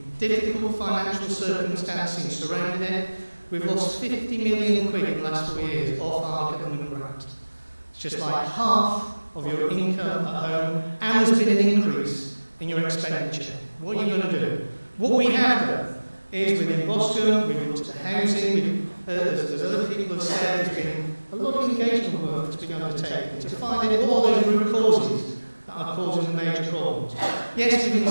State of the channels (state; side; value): inverted; both; correlation -1.00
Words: difficult financial circumstances surrounding it, we've lost 50 million quid in the last 4 years off our government grant. It's just like half of your income at home, and there's been an increase in your expenditure. What are you going to do? What we have done is within Boscombe, we've looked at the housing, as other people have said, there's been a lot of engagement work that's been undertaken to find out what are those root causes that are causing the major problems. Yes, we've